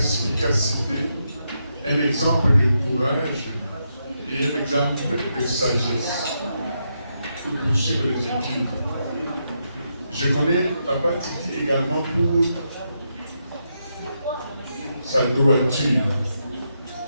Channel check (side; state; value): both; inverted; correlation -0.82